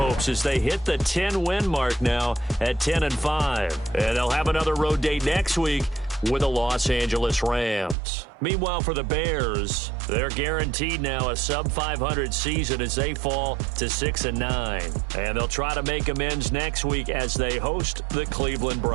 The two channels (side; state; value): left; drops out; at 8.0 s